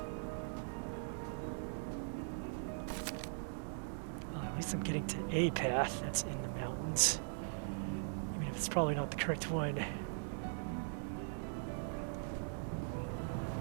At least I'm getting to a path that's in the mountains. Even if it's probably not the correct one.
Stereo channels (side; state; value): left; silent; digital silence